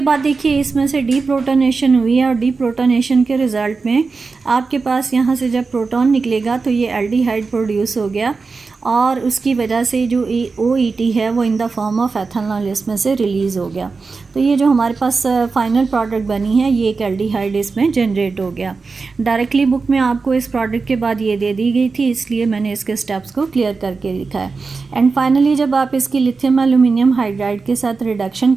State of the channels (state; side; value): quieter; left; 4.4 dB